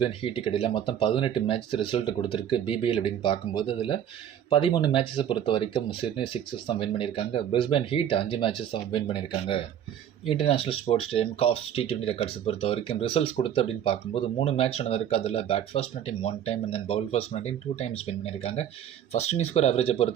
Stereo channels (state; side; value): quieter; left; 9.8 dB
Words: ஹீட்டுக்கு இடையில் மொத்தம் 18 மேட்ச் ரிசல்ட் கொடுத்துருக்கு பிபிஎல் அப்படின்னு பார்க்கும்போது. அதில் 13 மேட்சஸை பொறுத்த வரைக்கும் சிட்னி சிக்ஸர்ஸ் தான் வின் பண்ணியிருக்காங்க. பிரிஸ்பேன் ஹீட் 5 மேட்சஸ் தான் வின் பண்ணியிருக்காங்க. International sports stadium Coffs T20 ரெக்கார்ட்ஸை பொறுத்த வரைக்கும் ரிசல்ட்ஸ் கொடுத்து அப்படின்னு பார்க்கும்போது 3 மேட்ச் நடந்திருக்கு. அதில் பேட் ஃபர்ஸ்ட் பண்ண team 1 time and then bowl first பண்ண டீம் 2 டைம்ஸ் வின் பண்ணியிருக்காங்க. ஃபர்ஸ்ட் இன்னிங் ஸ்கோர் ஆவரேஜை